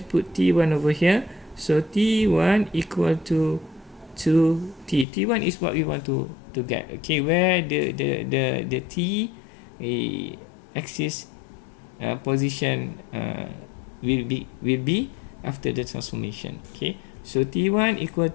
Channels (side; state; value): right; drops out; at 5.1 s